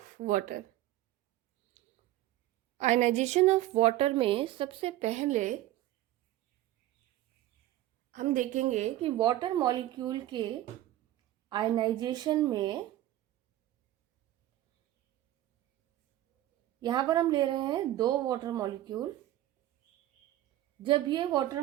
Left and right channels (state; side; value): quieter; left; 14.5 dB